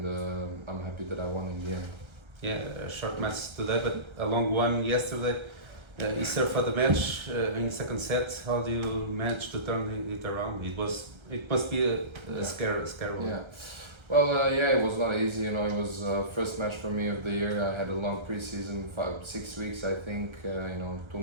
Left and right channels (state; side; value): late; left; 1.3 ms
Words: I'm happy that I won in the end. Yeah, a short match today, but a long one yesterday. You served for the match in the second set. How do you manage to turn it around? It must be a scare. Yeah. Well, it was not easy. You know, it was first match for me of the year. I had a long preseason, 6 weeks, I think. 2